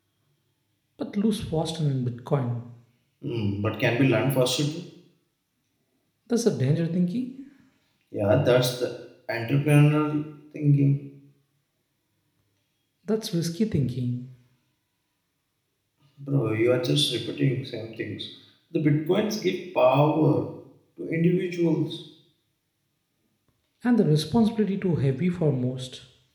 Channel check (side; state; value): both; identical; correlation 1.00